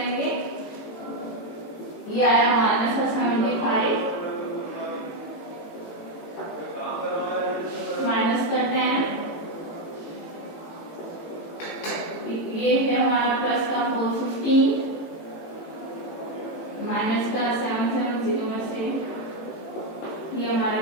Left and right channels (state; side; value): late; right; 18 ms